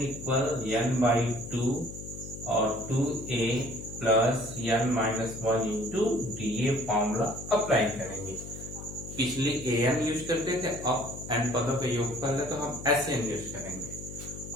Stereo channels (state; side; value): noise; left; hum, 11 dB below the sound